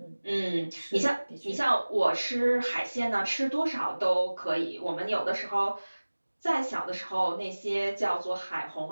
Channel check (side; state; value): both; inverted; correlation -1.00